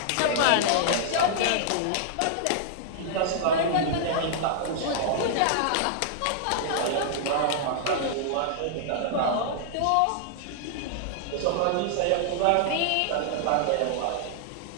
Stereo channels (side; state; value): both; different; correlation -0.01